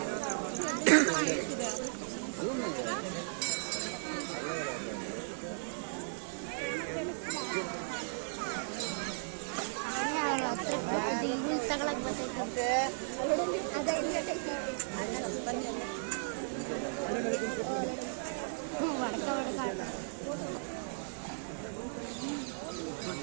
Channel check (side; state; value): left; silent; 54 dB below the other